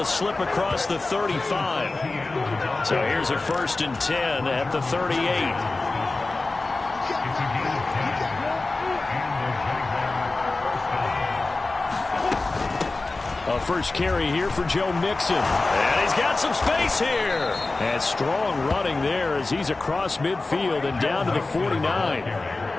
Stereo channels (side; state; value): right; quieter; 3.3 dB